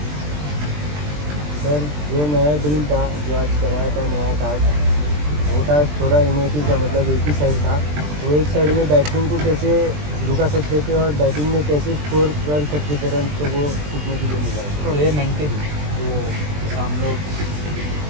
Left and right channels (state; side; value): late; left; 20 ms